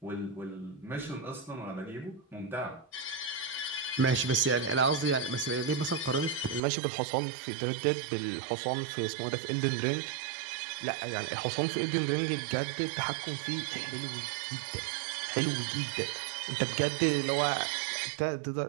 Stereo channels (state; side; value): drops out; left; at 6.6 s